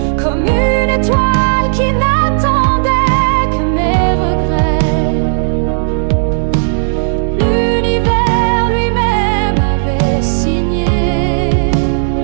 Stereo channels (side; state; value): left; silent; digital silence